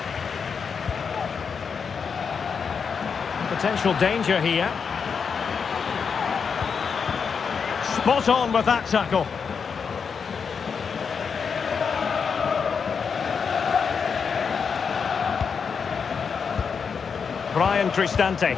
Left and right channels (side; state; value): right; quieter; 6.1 dB